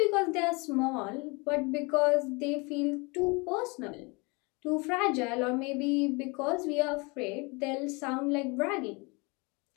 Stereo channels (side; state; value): right; quieter; 28.4 dB